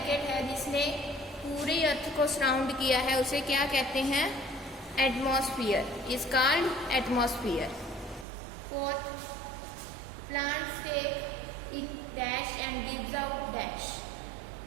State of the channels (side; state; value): left; drops out; at 8.2 s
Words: है जिसने पूरी अर्थ को सराउंड किया है उसे क्या कहते हैं? Atmosphere is called atmosphere. Fourth, plants take in dash and gives out dash